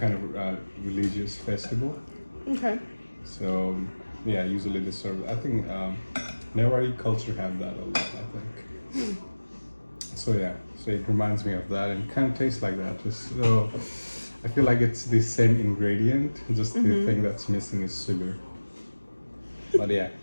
of religious festival. Okay. So yeah, usually they serve. I think Newari culture have that a lot. I think. So yeah, so it reminds me of that, and kind of tastes like that. Just so I feel like it's the same ingredient. Just the thing that's missing is sugar. But yeah.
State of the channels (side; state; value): both; inverted; correlation -1.00